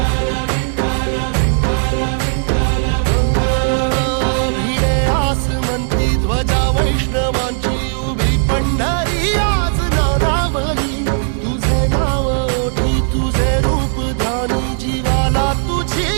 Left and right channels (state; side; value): silent; left; 69 dB below the other